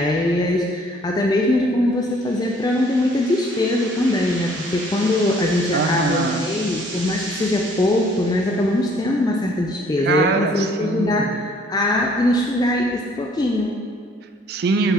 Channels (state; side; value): normal; both; correlation 0.60